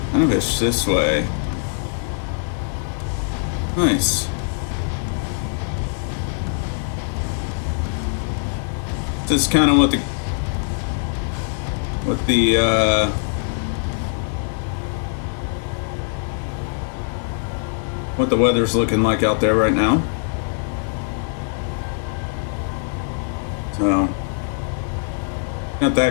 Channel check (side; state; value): right; silent; digital silence